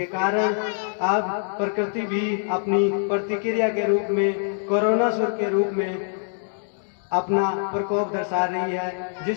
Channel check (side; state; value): right; silent; digital silence